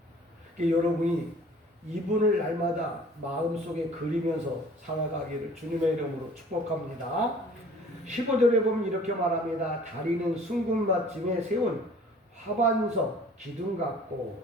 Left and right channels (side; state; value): both; normal; correlation 0.51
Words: 그러니까 여러분이 이분을 날마다 마음속에 그리면서 살아가기를 주님의 이름으로 축복합니다. 15절에 보면 이렇게 말합니다. 다리는 순금받침에 세운 화반석 기둥 같고,